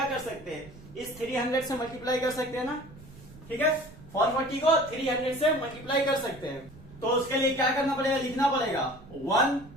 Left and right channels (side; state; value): right; noise; rumble, 20 dB below the sound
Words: कर सकते हैं, इस 300 से मल्टीप्लाई कर सकते हैं ना। ठीक है, 440 को 300 से मल्टीप्लाई कर सकते हैं। तो उसके लिए क्या करना पड़ेगा, लिखना पड़ेगा 1